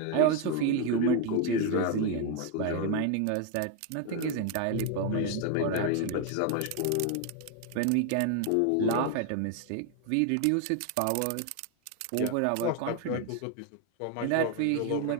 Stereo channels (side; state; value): both; different; correlation 0.01